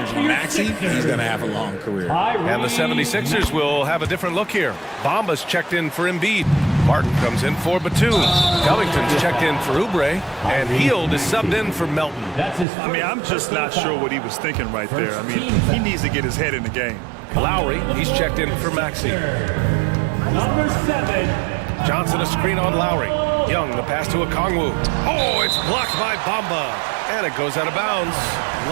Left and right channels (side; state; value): left; drops out; at 12.7 s